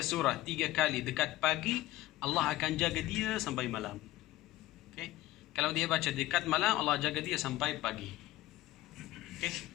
surah 3 kali dekat pagi, Allah akan jaga dia sampai malam. Okey. Kalau dia baca dekat malam, Allah jaga dia sampai pagi. Okey.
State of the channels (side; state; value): right; quieter; 16.4 dB